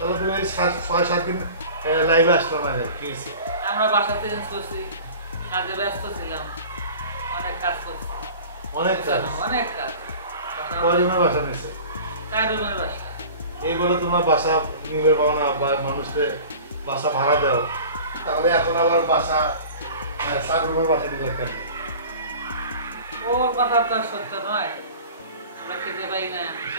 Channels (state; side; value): inverted; both; correlation -0.40